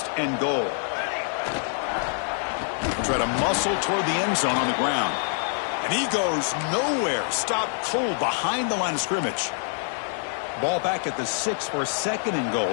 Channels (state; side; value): silent; right; 61 dB below the other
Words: and goal. Try to muscle toward the end zone on the ground. And he goes nowhere. Stopped cold behind the line of scrimmage. Ball back at the 6 for 2nd and goal